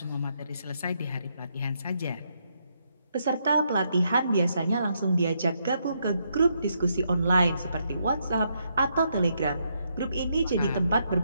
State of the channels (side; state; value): both; inverted; correlation -0.77